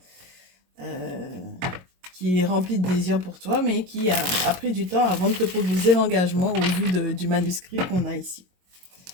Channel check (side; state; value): left; late; 22 ms